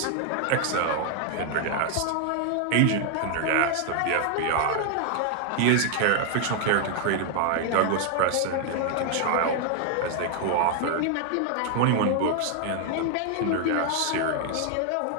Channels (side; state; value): both; different; correlation 0.00